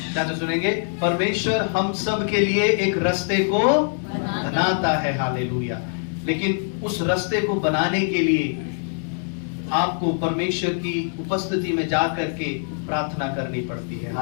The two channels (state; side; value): silent; right; 63 dB below the other